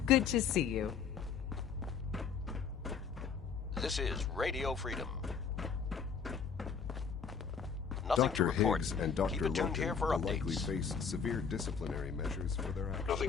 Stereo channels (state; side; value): quieter; right; 6.2 dB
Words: Good to see you. This is Radio Freedom. Nothing Dr. to report. Higgs and Keep Dr. it tuned Logan here for will updates. likely face severe disciplinary measures for their actions.